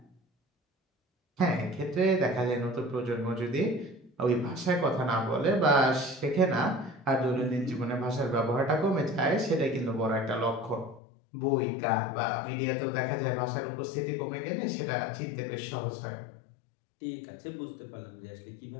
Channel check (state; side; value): drops out; right; at 11.0 s